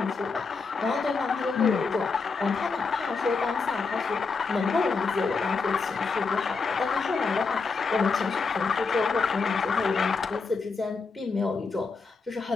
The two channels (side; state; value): right; quieter; 4.6 dB